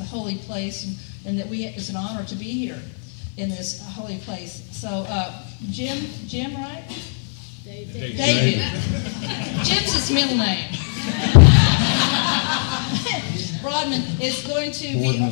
a holy place and that it's an honor to be here in this holy place. So, Jim, right? David. Jim's his middle name. Broadman is going to be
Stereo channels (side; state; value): right; silent; 55 dB below the other